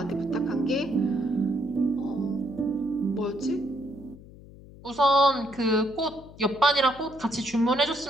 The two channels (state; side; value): noise; left; hum, 19 dB below the sound